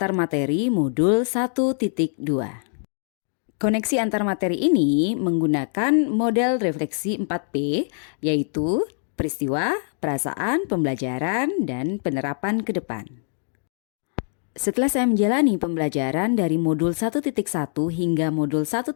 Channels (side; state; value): right; silent; digital silence